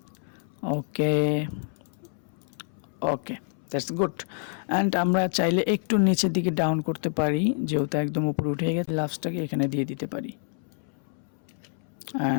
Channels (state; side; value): silent; right; 60 dB below the other